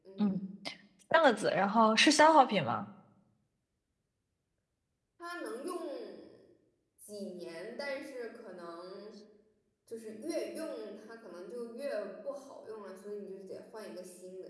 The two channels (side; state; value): both; identical; correlation 1.00